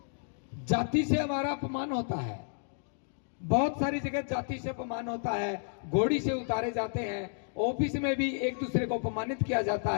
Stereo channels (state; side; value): silent; right; digital silence